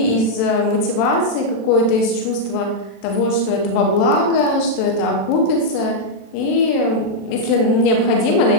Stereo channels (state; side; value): late; right; 35 ms